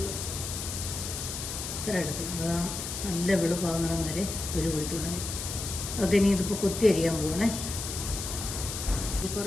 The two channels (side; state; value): left; noise; hiss, 5 dB below the sound